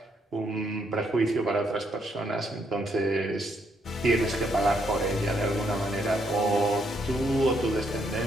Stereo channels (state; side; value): normal; both; correlation 0.74